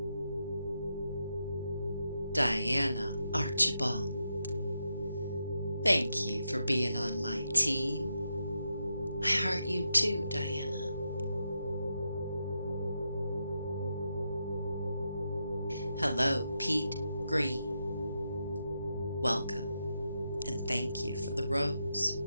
Diana Archibald, thank you for being on my team. I heart you too, Diana. Hello, Pete Green. Welcome, and thank you for the rose.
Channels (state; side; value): inverted; both; correlation -0.84